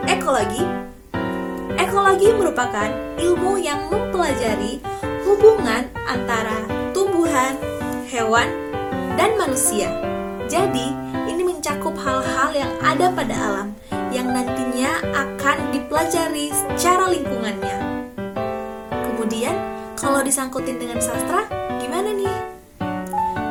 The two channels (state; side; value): identical; both; correlation 1.00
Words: ekologi? Ekologi merupakan ilmu yang mempelajari hubungan antara tumbuhan, hewan, dan manusia. Jadi, ini mencakup hal-hal yang ada pada alam yang nantinya akan dipelajari secara lingkungannya. Kemudian, kalau disangkutin dengan sastra, gimana nih?